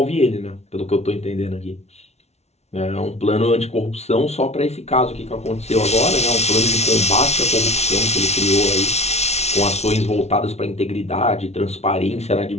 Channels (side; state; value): right; late; 0.31 ms